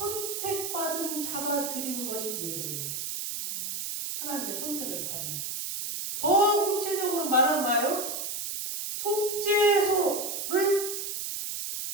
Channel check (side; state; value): right; noise; hiss, 4 dB below the sound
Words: 자가 드리는 것이 예배예요. 하나님의 선택을 받은 자. 더 구체적으로 말하면 뭐예요? 속죄소를